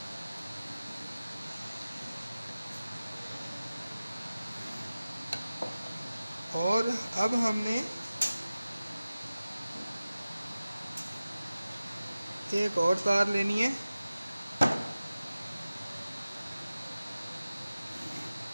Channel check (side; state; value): both; inverted; correlation -0.96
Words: और अब हमने एक और तार लेनी है।